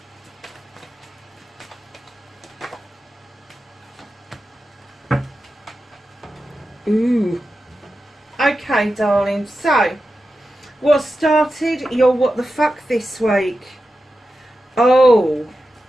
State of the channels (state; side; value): normal; both; correlation 0.91